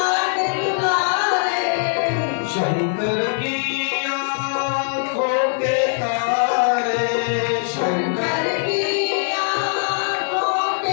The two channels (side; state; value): right; silent; 65 dB below the other